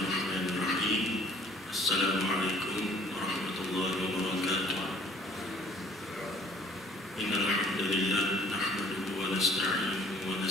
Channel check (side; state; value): both; normal; correlation 0.55